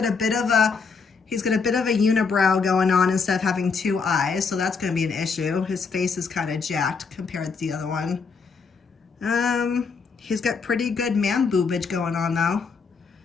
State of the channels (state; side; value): quieter; right; 5.1 dB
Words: a bit of a unibrow going on instead of having two eyes, so that's going to be an issue. His face is kind of jacked compared to the other one. He's got pretty good man boobage going on though.